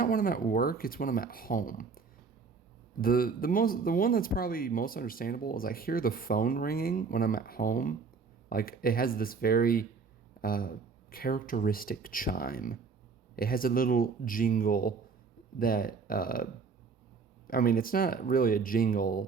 when I'm at work, it's when I'm at home. The one that's probably most understandable is I hear the phone ringing when I'm at home. Like it has this very uh, characteristic chime. It has a little jingle that I mean it's not really a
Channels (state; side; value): quieter; left; 5.0 dB